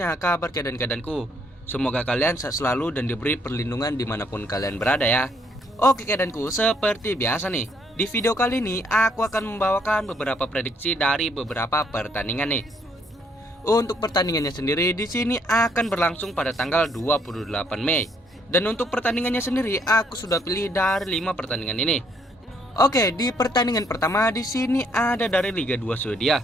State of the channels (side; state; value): both; normal; correlation 0.69